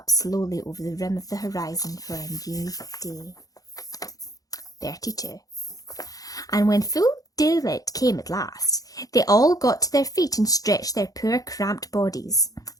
slowly over the rim of the horizon for a new day. 32. And when full daylight came at last, they all got to their feet and stretched their poor cramped bodies.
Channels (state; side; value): late; right; 0.17 ms